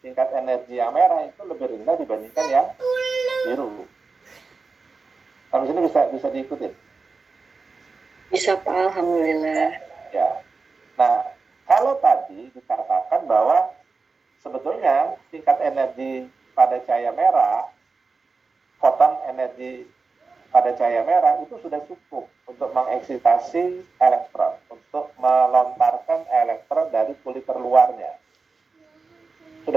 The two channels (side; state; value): left; quieter; 4.3 dB